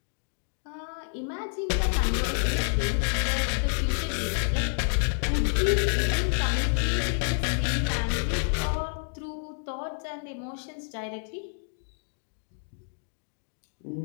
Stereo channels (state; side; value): silent; right; digital silence